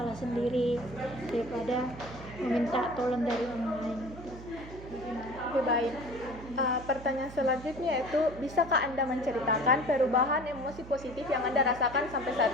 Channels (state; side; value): noise; right; hum, 14 dB below the sound